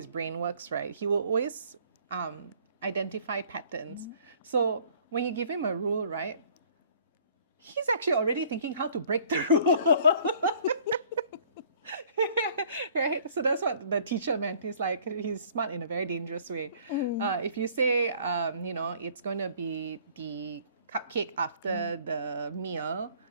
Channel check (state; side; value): inverted; both; correlation -0.56